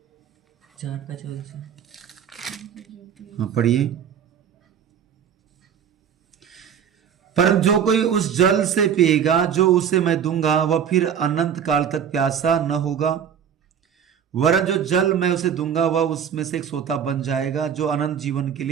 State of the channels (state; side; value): quieter; left; 8.3 dB